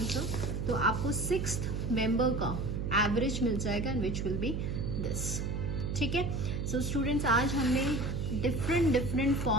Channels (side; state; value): right; noise; hum, 2 dB below the sound